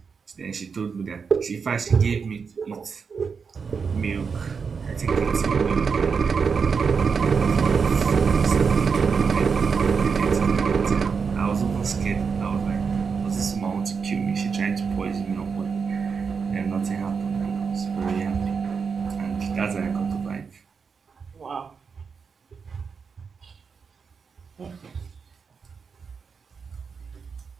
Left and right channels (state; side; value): quieter; left; 5.7 dB